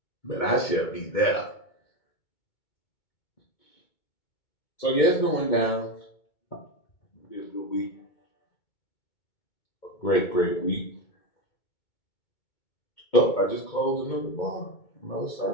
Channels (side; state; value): right; late; 2.2 ms